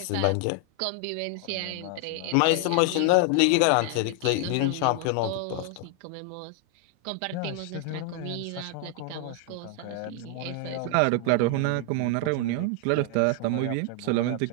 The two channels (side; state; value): both; different; correlation 0.00